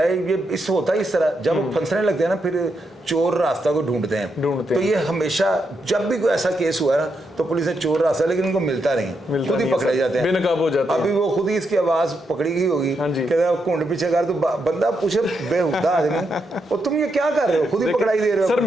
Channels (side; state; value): both; normal; correlation 0.82